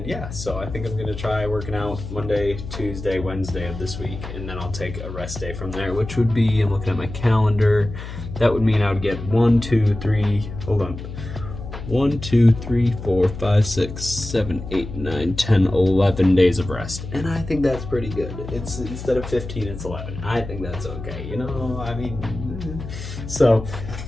yeah, so I think I'm gonna try working out Monday, Tuesday, Wednesday of this week, and then I'll take a rest day from there, which would be, I'm looking at my calendar, that would mean I would get 1, 2, 3, 4, 5, 6, 7, 8, 9, 10, 11 days of rest. And I think that's pretty good. It's instead of 15, it's 11. I think that's okay, you know, I mean, so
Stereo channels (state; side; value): noise; left; hum, 10 dB below the sound